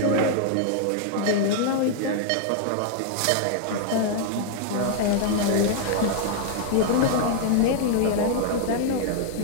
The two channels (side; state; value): both; different; correlation 0.00